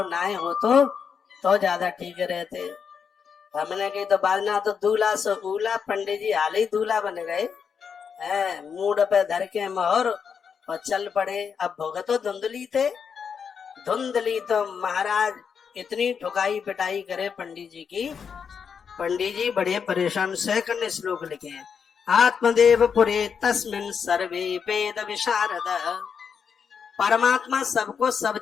ना हो तो ज्यादा ठीक रहते। हमने की तो बाजना तो दूल्हा सो उला, पंडित जी हाल ही दूल्हा बन गए। मूड पे धर के मोहर और चल पड़े। अब भोग तो धुंधली थे। धुंधली तो महाराज इतनी ठुकाई पिटाई करे पंडित जी की। पंडित जी बड़े परेशान। सेकंड श्लोक लिखे हैं, आत्मदेव पुरे तस्मिन सर्वे वेद विशारद। परमात्मा सबको सब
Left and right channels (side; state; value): right; quieter; 6.6 dB